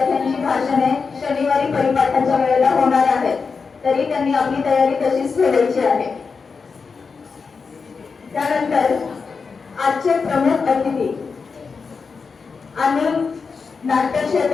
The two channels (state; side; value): quieter; right; 5.0 dB